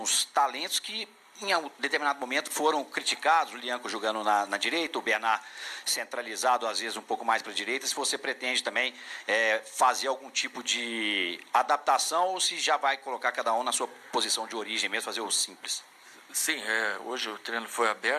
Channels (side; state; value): both; identical; correlation 1.00